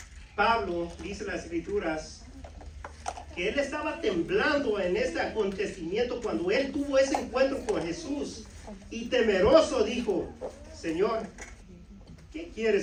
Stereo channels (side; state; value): both; identical; correlation 1.00